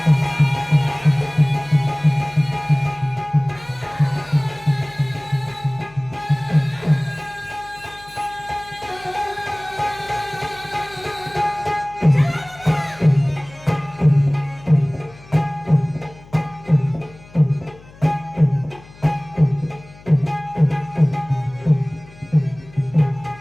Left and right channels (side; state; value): left; noise; hum, 23 dB below the sound